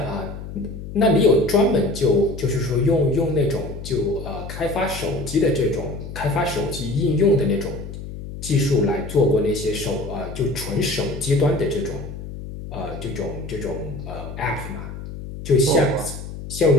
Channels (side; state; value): left; noise; hum, 10 dB below the sound